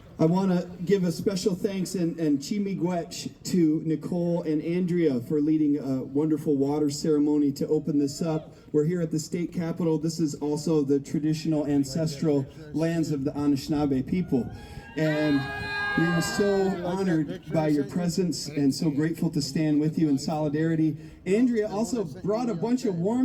I want to give a special thanks and chimiguech to Nicole and Andrea for leading a wonderful water ceremony to open this up. We're here at the state capitol. This is also the traditional ancestral lands of the Anishinaabe people. And we are so honored by your presence and so grateful to stand with you in solidarity. Andrea also brought a bunch of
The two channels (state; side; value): identical; both; correlation 1.00